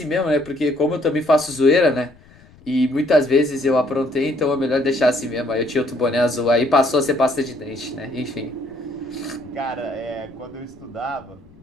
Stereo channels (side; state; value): left; noise; rumble, 26 dB below the sound